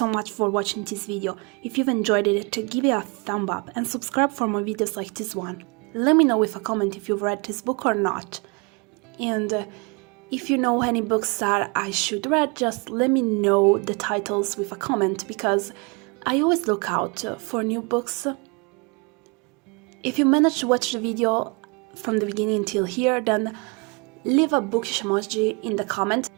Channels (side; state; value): left; quieter; 31.0 dB